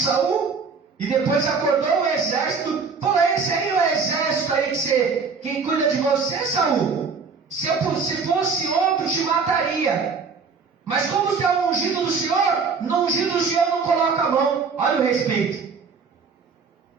E depois acordou o exército. Falou: esse aí é o exército aí que cuida de você, Saul. Se fosse outro, te mataria. Mas como você é o ungido do Senhor, no ungido do Senhor não coloca a mão. Olha o respeito.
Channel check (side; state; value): left; quieter; 5.2 dB